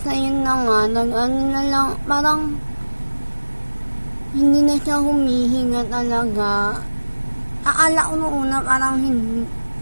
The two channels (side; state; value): both; inverted; correlation -1.00